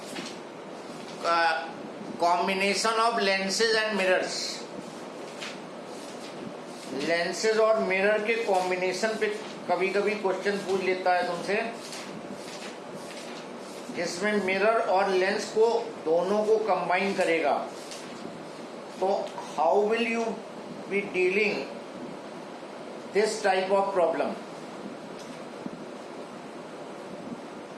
Combination of lenses and mirrors. Lenses और mirror के कॉम्बिनेशन पे कभी कभी क्वेश्चन पूछ लेता है तुमसे, जिसमें मिरर और लेंस को दोनों को कंबाइन करेगा। तो how will you be dealing this type of problem?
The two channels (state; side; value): identical; both; correlation 1.00